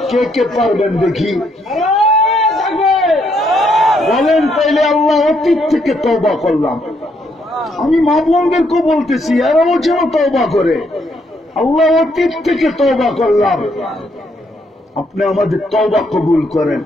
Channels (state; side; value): normal; both; correlation 0.73